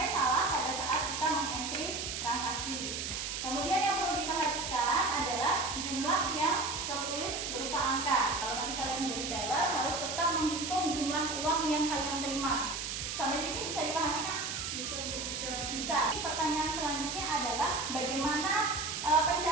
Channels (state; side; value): noise; right; hiss, 4 dB below the sound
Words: salah pada saat kita mengentry transaksi. Kemudian yang perlu diperhatikan adalah jumlah yang tertulis berupa angka. Kalau nanti kalian menjadi teller harus tetap menghitung jumlah uang yang kalian terima. Sampai sini bisa dipahami, Kak? Bisa. Pertanyaan selanjutnya adalah bagaimana